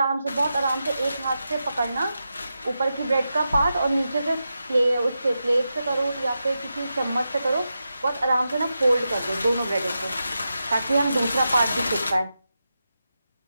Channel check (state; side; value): inverted; both; correlation -0.89